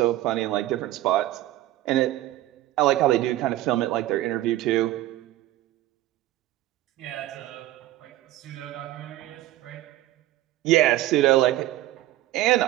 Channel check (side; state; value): left; quieter; 15.1 dB